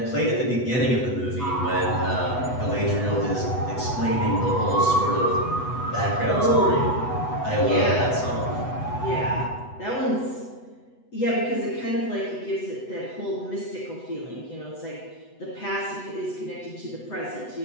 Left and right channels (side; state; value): right; late; 8.1 ms